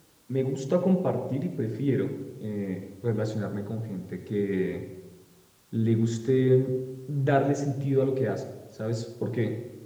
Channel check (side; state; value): both; identical; correlation 1.00